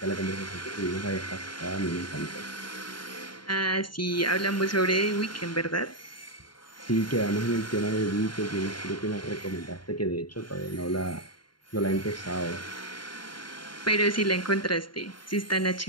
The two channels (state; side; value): late; right; 0.72 ms